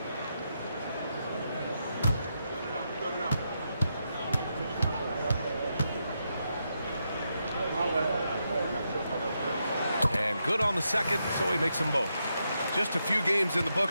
And good on the second, so he makes them both. Just a few games in the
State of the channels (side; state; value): both; inverted; correlation -0.83